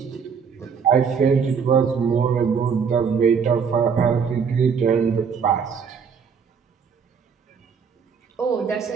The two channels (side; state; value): left; quieter; 6.3 dB